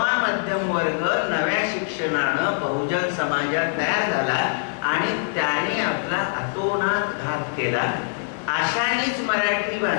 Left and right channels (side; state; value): right; silent; digital silence